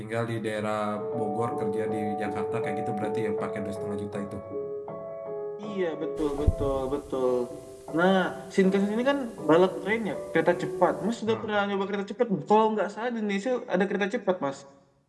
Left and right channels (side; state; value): both; identical; correlation 1.00